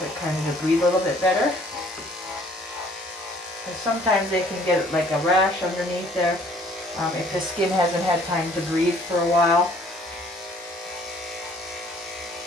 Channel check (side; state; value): both; normal; correlation 0.58